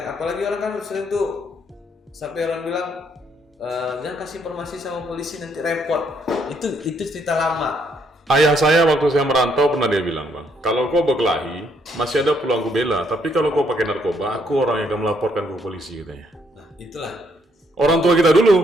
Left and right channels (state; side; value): normal; both; correlation 0.71